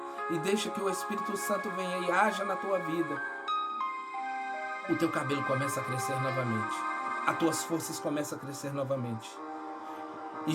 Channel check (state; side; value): identical; both; correlation 1.00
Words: e deixa que o Espírito Santo venha e haja na tua vida, o teu cabelo começa a crescer novamente, as tuas forças começam a crescer novamente.